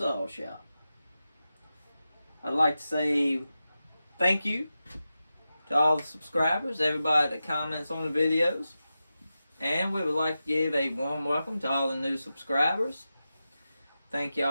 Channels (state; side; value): inverted; both; correlation -0.92